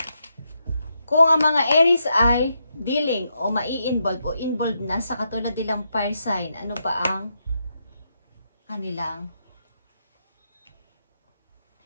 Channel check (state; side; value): inverted; both; correlation -0.82